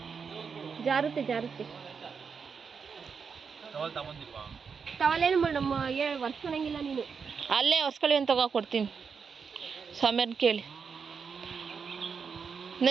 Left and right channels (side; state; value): left; quieter; 5.9 dB